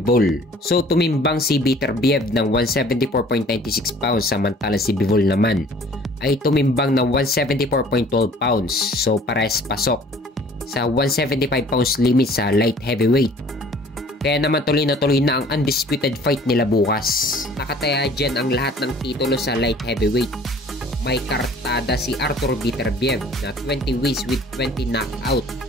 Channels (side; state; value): both; normal; correlation 0.52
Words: So tumimbang si Beterbiev ng 174.96 pounds samantalang si Bivol naman ay tumimbang ng 174.12 pounds. So parehas pasok sa 175 pounds limit sa light heavyweight. Kaya naman tuloy na ang undisputed fight nila bukas. Nakataya dyan ang lahat ng titulo sa light heavyweight. May kartada si Artur Beterbiev na 20 wins with 20 knockout